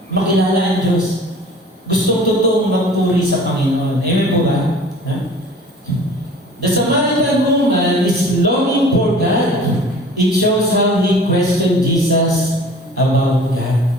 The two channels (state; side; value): normal; both; correlation 0.46